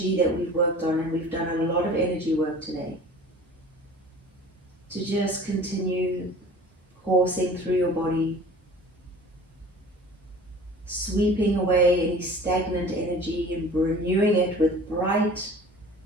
that we've worked on, and we've done a lot of energy work today, to just continue coursing through your body, sweeping away any stagnant energy and renewing it with bright,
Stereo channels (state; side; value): normal; both; correlation 0.43